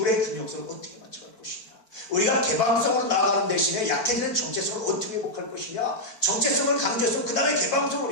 균형성을 어떻게 맞춰갈 것이냐. 우리가 개방성으로 나아가는 대신에 약해지는 정체성을 어떻게 회복할 것이냐. 정체성을 강조해서 그 다음에 개방성을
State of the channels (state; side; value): late; right; 4.5 ms